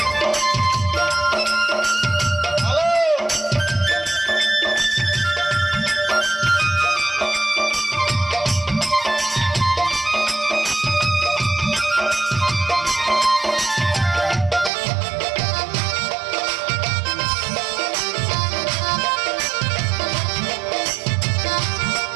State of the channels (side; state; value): left; drops out; at 14.7 s